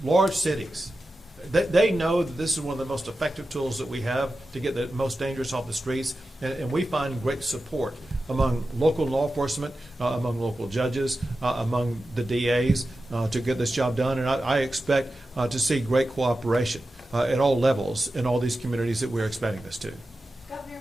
large cities, they know that this is one of the most effective tools that we have to get the most dangerous off the streets, and we find great support among local law enforcement, among local judges, among the DAs to get this job done, and I expect to see great cooperation at all levels in all these communities that we're expanding this to. Governor,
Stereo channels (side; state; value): both; normal; correlation 0.93